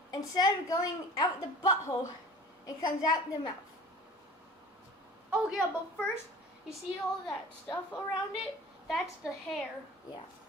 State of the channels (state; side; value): normal; both; correlation 0.43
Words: instead of going out the butthole, it comes out the mouth. Oh yeah, but first, you see all that stuff around it? That's the hair. Yeah,